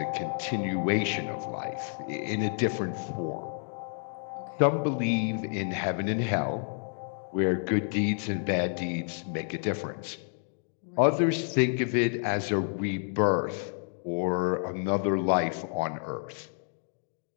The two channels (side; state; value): right; silent; 58 dB below the other